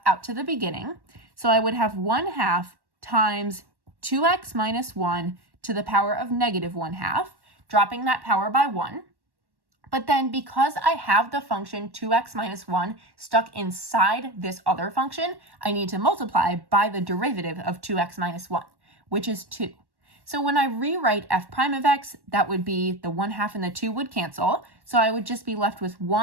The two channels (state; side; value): late; left; 1.1 ms